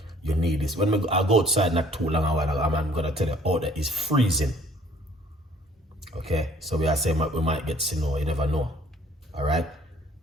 You need this. When I go outside not too long a while ago, I'm gonna tell you out there is freezing. Okay, so we are saying we might get snow, you never know. All right,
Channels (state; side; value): normal; both; correlation 0.57